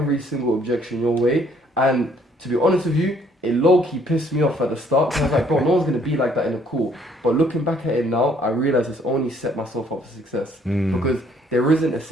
single objection your way. And to be honest with you, it low-key pissed me off at the start. Cause I was like, bro, no one's gonna be like that in a call. But looking back at it now, I realize it's only set myself up for success because there isn't a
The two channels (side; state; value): both; normal; correlation 0.64